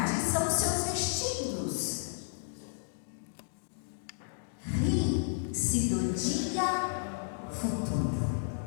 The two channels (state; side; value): silent; right; digital silence